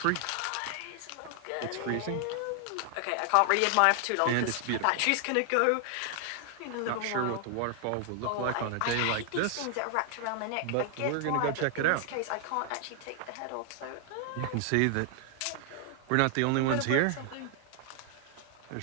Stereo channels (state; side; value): different; both; correlation 0.00